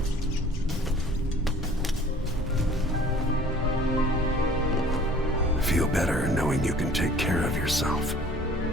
Feel better knowing you can take care of yourself.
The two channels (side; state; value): both; normal; correlation 0.51